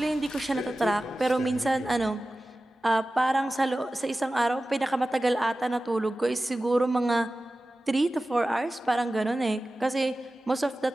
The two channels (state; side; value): normal; both; correlation 0.95